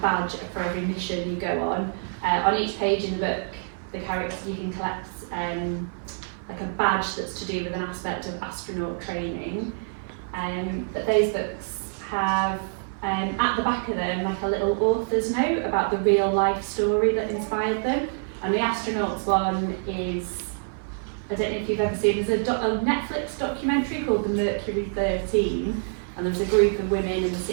badge for every mission you go on. On each page in the book, the characters, you can collect like a badge that's to do with an aspect of astronaut training. But those books have at the back of them like a little author's note about the real life story that inspired them. And the astronauts one is, I don't know if you've ever seen, there's a Netflix documentary called The Mercury 13, and there was a group of women in the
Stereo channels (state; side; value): silent; left; 55 dB below the other